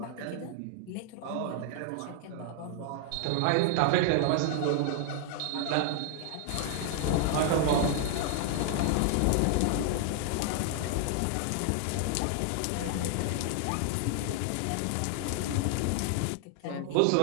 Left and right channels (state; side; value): different; both; correlation 0.00